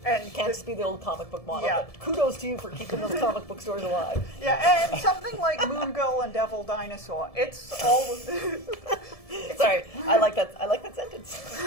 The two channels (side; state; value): right; late; 1.7 ms